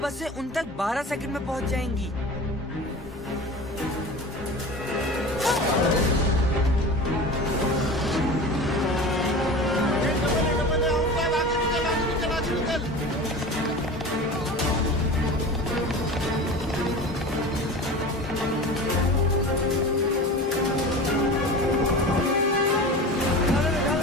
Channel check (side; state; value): both; normal; correlation 0.34